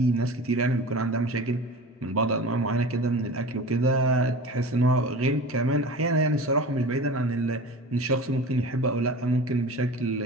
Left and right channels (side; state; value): both; normal; correlation 0.35